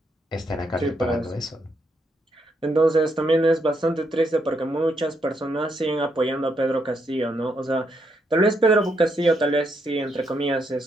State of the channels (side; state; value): both; normal; correlation 0.77